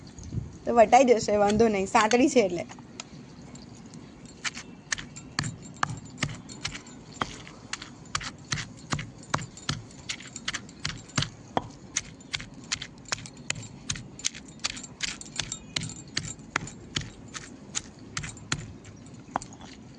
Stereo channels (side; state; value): both; identical; correlation 1.00